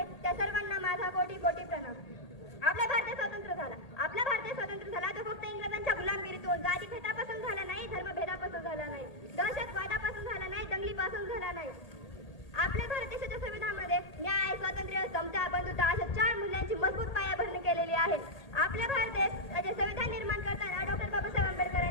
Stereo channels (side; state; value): right; late; 1.8 ms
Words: त्या सर्वांना माझा कोटी कोटी प्रणाम. आपला भारत स्वतंत्र झाला. आपला भारत स्वतंत्र झाला तो फक्त इंग्रजांच्या गुलामगिरीतून, जातीभेदापासून झाला नाही, धर्मभेदापासून झाला नाही, दहशतवादापासून झाला नाही, दंगलीपासून झाला नाही. आपल्या भारत देशाच्या संविधानामध्ये न्याय, स्वातंत्र्य, समता, बंधुता अशा 4 मूल्यांची मजबूत पायाभरणी केलेली आहे. आपल्या भारत देशाचे संविधान निर्माण करताना डॉक्टर बाबासाहेब